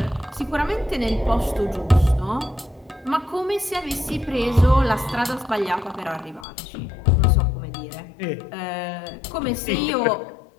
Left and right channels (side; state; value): right; drops out; at 6.5 s